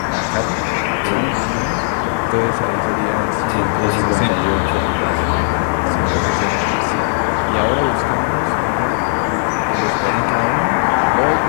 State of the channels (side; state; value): right; silent; digital silence